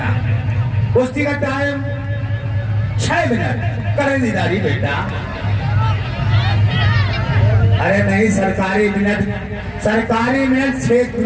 कुश्ती का टाइम 6 मिनट करें दीदारी बेटा। अरे नहीं, सरकारी मिनट 6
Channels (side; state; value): both; identical; correlation 1.00